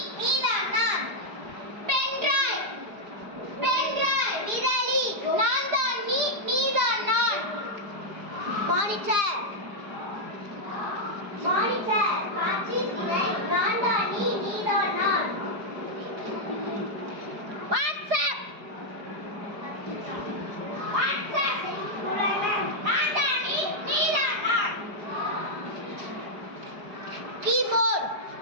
நீ தான் நான். பென்டிரைவ் விரலி நான் தான் நீ நீ தான் நான். மானிட்டர் காட்சி திரை நான் தான் நீ நீ தான் நான். வாட்ஸ்அப் உலகம் நான் தான் நீ நீ தான் நான். கீபோர்ட்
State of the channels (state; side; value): late; left; 4.9 ms